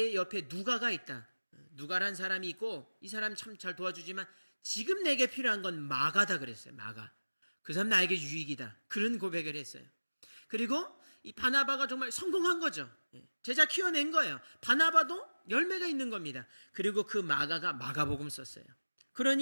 옆에 누가가 있다. 누가란 사람이 있고 이 사람 참 잘 도와주지만 지금 내게 필요한 건 마가다 그랬어요. 마가. 그 사람 나에게 유익이다. 그런 고백을 했어요. 그리고 이 바나바가 정말 성공한 거죠. 제자 키워낸 거예요. 바나바도 열매가 있는 겁니다. 그리고 그 마가가 마가복음 썼어요.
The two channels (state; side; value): inverted; both; correlation -1.00